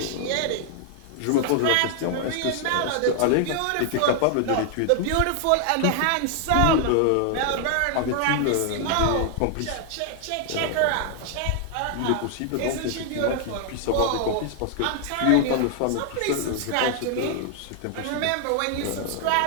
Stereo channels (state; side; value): different; both; correlation 0.00